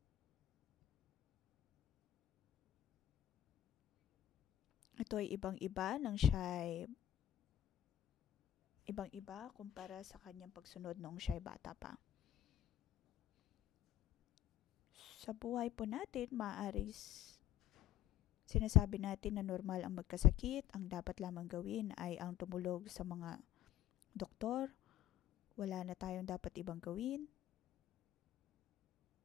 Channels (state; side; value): quieter; right; 12.1 dB